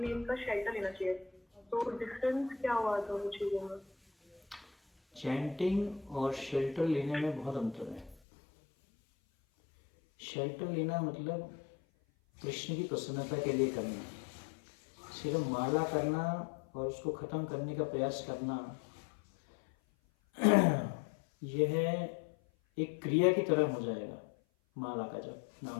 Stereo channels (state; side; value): drops out; right; at 8.2 s